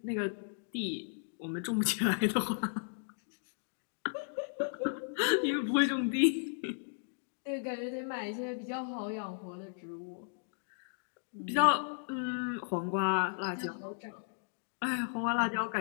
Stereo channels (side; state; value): right; silent; digital silence